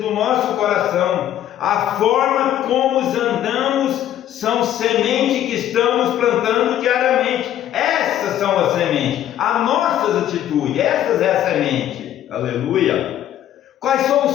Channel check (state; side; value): quieter; right; 11.6 dB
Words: nosso coração, a forma como andamos, são sementes que estamos plantando diariamente. Essas são as sementes, as nossas atitudes, essas é a semente. Aleluia. Quais são